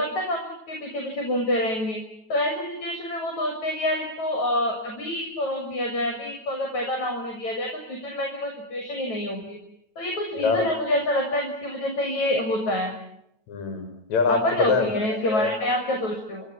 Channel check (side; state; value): right; late; 9.1 ms